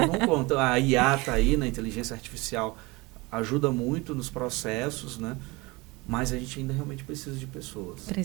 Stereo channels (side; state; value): left; quieter; 24.0 dB